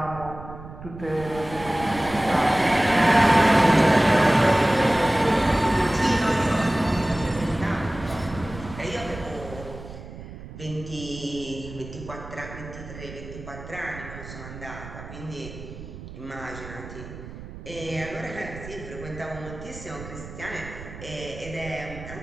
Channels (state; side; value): noise; right; rumble, 13 dB below the sound